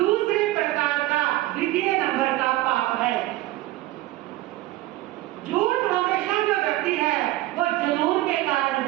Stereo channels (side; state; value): left; quieter; 16.9 dB